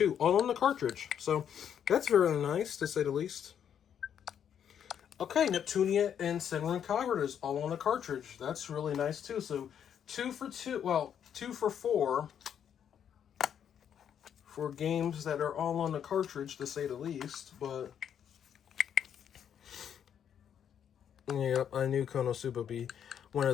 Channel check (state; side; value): quieter; right; 8.8 dB